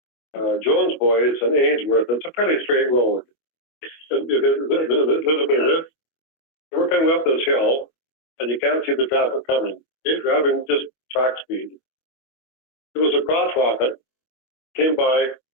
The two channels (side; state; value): right; late; 25 ms